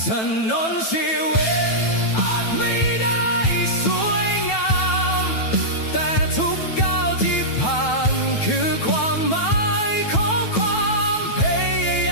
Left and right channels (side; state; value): right; late; 9.1 ms